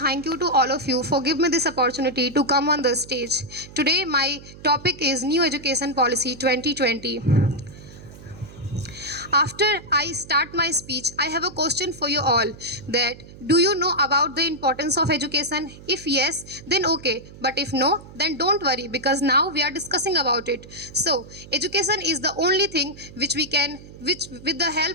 you to all of you for giving me this opportunity to come on the stage. Today, my topic is New Education Policy 2020. After I start my speech, I have a question for you all that do you know about the importance of education? If yes, then okay. But if no, then don't worry because now we are discussing about it. So, education is the only thing which with the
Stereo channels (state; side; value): noise; right; hum, 18 dB below the sound